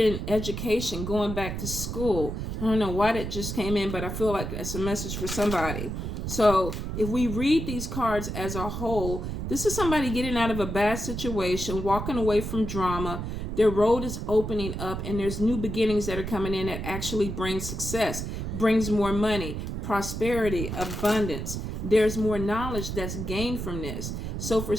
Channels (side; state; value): right; noise; rumble, 5 dB below the sound